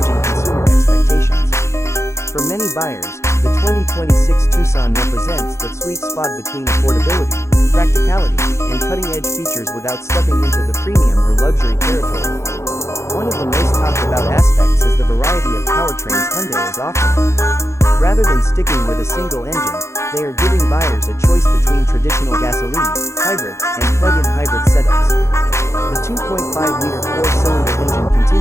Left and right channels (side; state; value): right; late; 0.14 ms